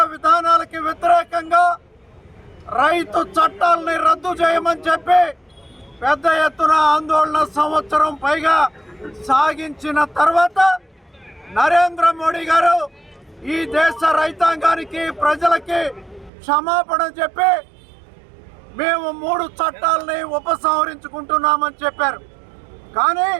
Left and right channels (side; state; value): left; drops out; at 16.3 s